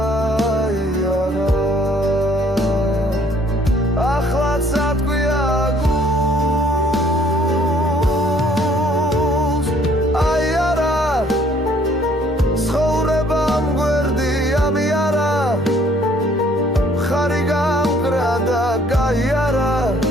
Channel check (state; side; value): normal; both; correlation 0.61